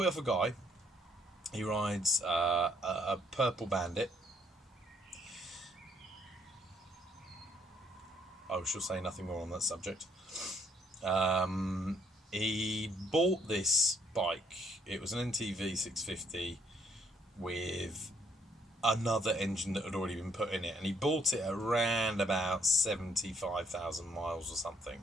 it off a guy. He rides a purple Bandit. I shall say nothing more on that subject. He bought this bike. It was an NTV 650 with another engine that had already been put in it, and he bought it around about 75,000 miles or something.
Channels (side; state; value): both; normal; correlation 0.67